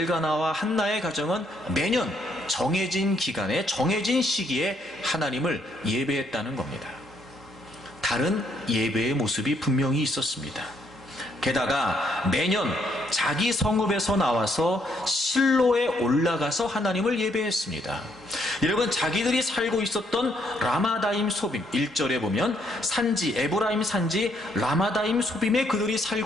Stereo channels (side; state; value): both; normal; correlation 0.71